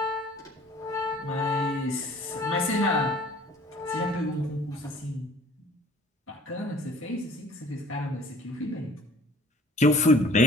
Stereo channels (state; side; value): normal; both; correlation 0.52